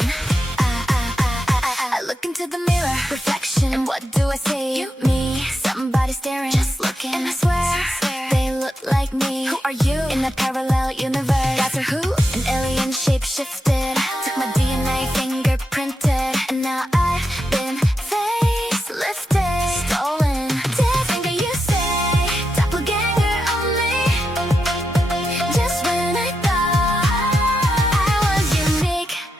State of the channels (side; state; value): both; normal; correlation 0.86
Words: I look into the mirror, reflection, and what do I see? You, me, somebody staring, just looking, and I swear they look like me. Who are you? In a parallel universe, that's her who? An alien shape-shifted, took my DNA, fingerprinted, and now I've been facelifted, stolen. Dead finger, you say, doppelganger only. Just when I thought I was unique,